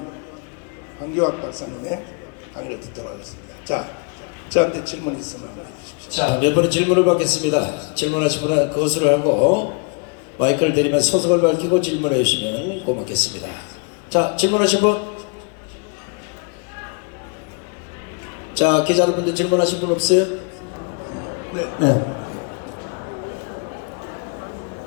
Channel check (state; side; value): quieter; right; 36.9 dB